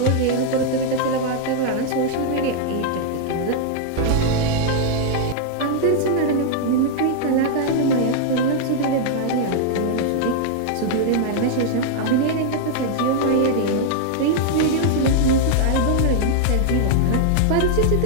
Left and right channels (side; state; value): both; different; correlation 0.00